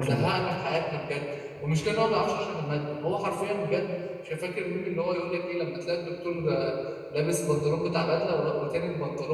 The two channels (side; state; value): both; identical; correlation 1.00